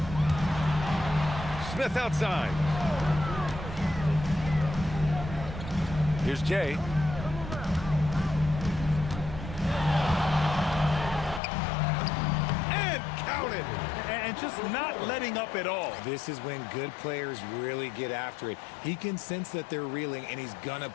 Smith outside. Here's Jay. And counted. And just not letting up at all. This is when good players really get after it. He can sense that they're reeling, and he's gonna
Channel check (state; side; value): drops out; right; at 11.4 s